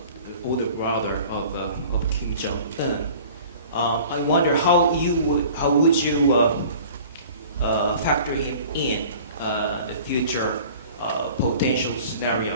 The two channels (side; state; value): both; inverted; correlation -0.46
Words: older brother of Kim Jong-un. I wonder how would you factor him in the future potential scenario